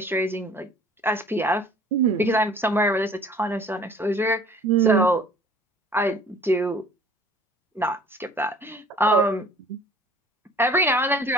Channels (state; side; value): normal; both; correlation 0.51